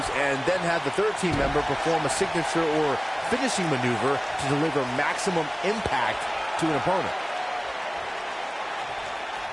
and then have the third team member perform a signature or finishing maneuver to deliver maximum impact to an opponent.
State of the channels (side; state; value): both; identical; correlation 1.00